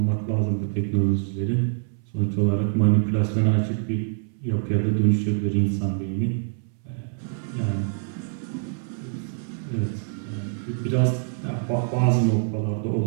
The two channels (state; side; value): silent; left; 62 dB below the other